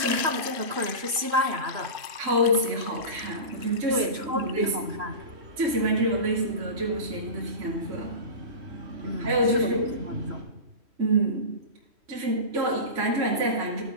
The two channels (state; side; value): late; left; 3.1 ms